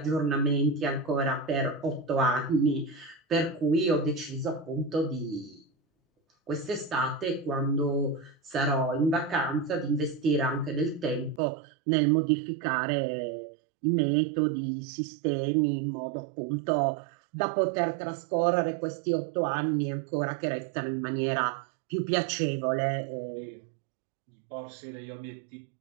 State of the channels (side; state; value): left; drops out; at 11.4 s